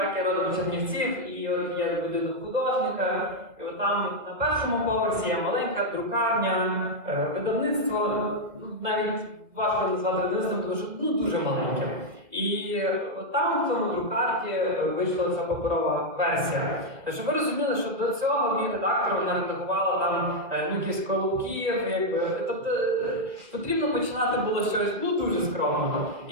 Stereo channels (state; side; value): late; left; 2.2 ms